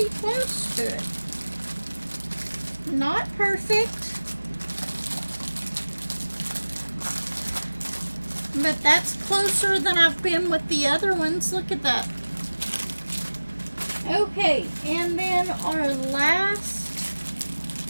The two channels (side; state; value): both; inverted; correlation -1.00